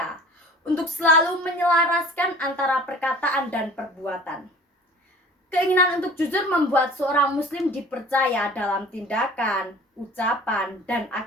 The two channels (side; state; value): both; normal; correlation 0.45